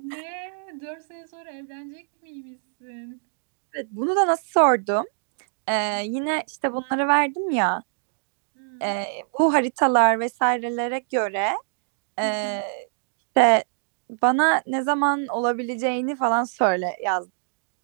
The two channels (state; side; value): silent; left; digital silence